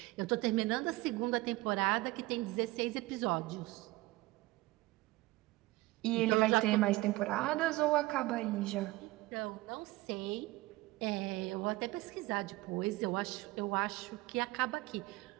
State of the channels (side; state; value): left; quieter; 20.1 dB